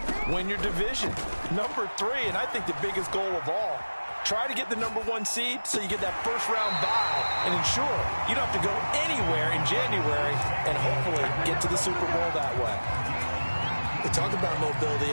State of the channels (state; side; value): inverted; both; correlation -1.00